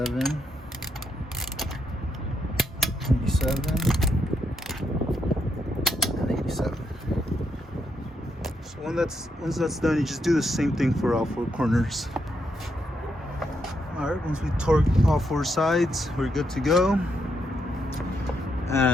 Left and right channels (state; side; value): normal; both; correlation 0.79